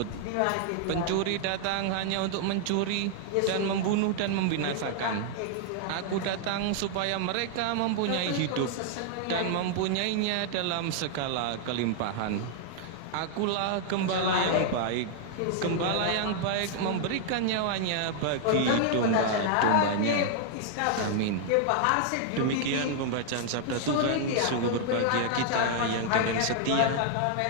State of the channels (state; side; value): different; both; correlation 0.00